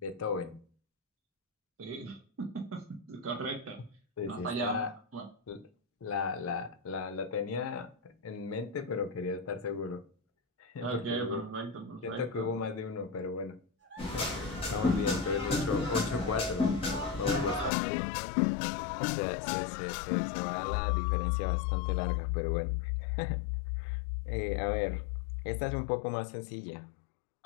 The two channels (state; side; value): drops out; right; at 17.7 s